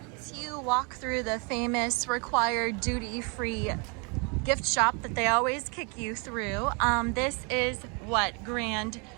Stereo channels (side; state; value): left; quieter; 33.0 dB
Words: Once you walk through the famous required duty-free gift shop that they always kick you through, this is what Grand